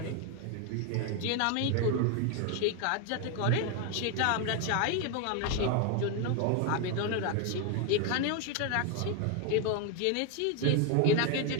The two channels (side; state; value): both; different; correlation 0.01